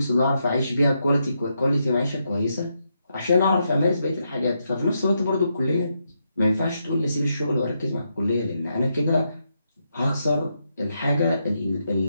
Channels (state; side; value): inverted; both; correlation -0.82